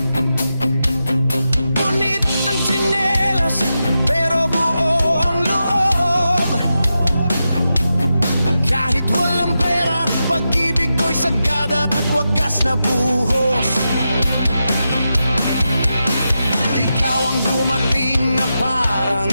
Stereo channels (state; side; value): inverted; both; correlation -0.89